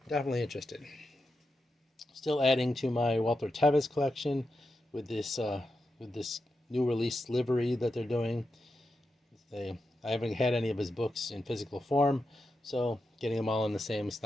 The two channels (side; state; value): both; normal; correlation 0.88